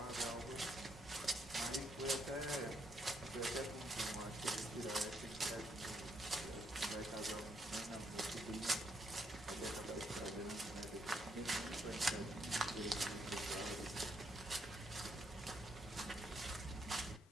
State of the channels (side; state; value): both; normal; correlation 0.75